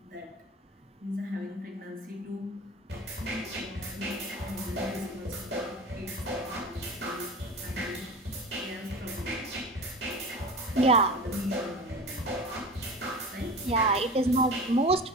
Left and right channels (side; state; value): both; normal; correlation 0.33